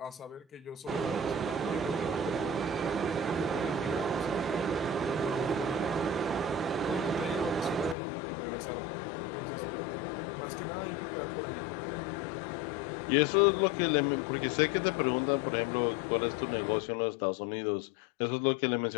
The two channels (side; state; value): right; drops out; at 8.0 s